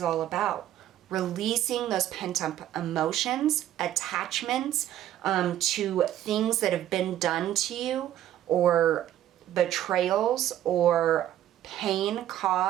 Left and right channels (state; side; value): quieter; left; 12.2 dB